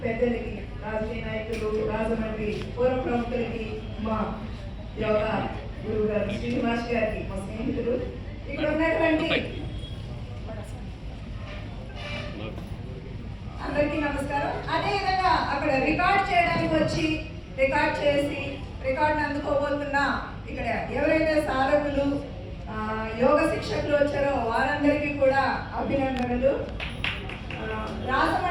పెద్దలకి, రాజకీయ నాయకులు, రాజమండ్రి పూర్వ ప్రముఖులకి, మా యోగా గురువు గారు శ్రీనివాస్ గారికి, మా స్నేహితులు, ఇక్కడ ఉన్నటువంటి అందరికీ నమస్కారం. అదేవిధంగా అక్కడ రికార్డ్ చేయడానికి వచ్చి రికార్డ్ చేసి రికార్డును అందుకోబోతున్న ఇక్కడ ఎవరైతే సాధకులు యోగ శిక్షకులు వచ్చారో వారందరికీ కూడా అభినందనలు.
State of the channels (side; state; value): both; identical; correlation 1.00